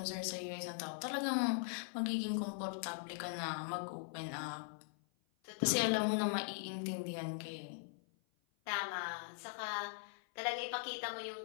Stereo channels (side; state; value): right; silent; 51 dB below the other